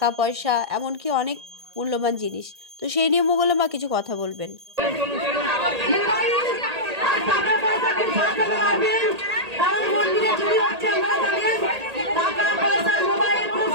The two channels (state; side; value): late; left; 1.8 ms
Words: পয়সা, এমনকি অনেক মূল্যবান জিনিস। তো সেই নিয়ে মঙ্গলা মা কিছু কথা বলবেন।